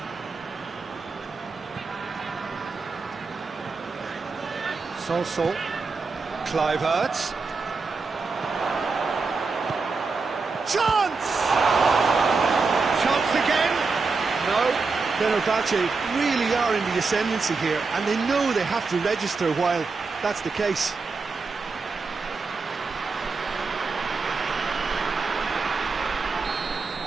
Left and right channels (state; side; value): quieter; left; 4.4 dB